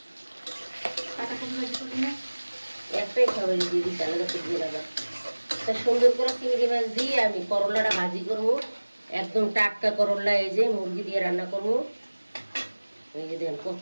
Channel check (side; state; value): both; inverted; correlation -1.00